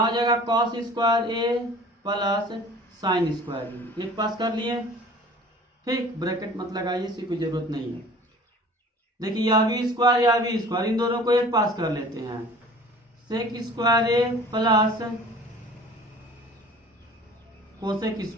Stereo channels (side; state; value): both; normal; correlation 0.46